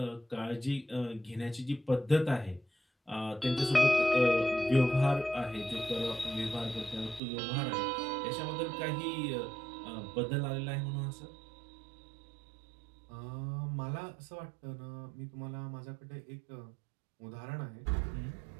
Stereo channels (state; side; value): drops out; left; at 7.2 s